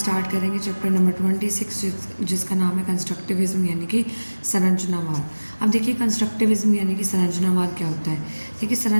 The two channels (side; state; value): both; inverted; correlation -1.00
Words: करेंगे चैप्टर नंबर 26 जिसका नाम है कंस्ट्रक्टिविज्म यानी कि संरचनावाद। अब देखिए, कंस्ट्रक्टिविज्म यानी कि संरचनावाद क्या होता है। देखिए,